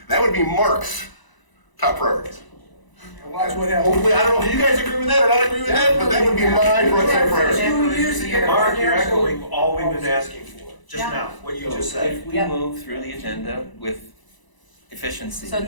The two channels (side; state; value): right; late; 1.0 ms